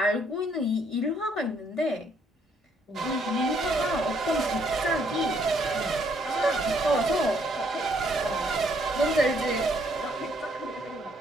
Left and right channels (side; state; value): both; normal; correlation 0.68